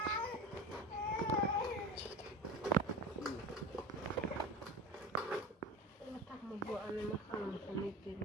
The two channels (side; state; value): both; normal; correlation 0.33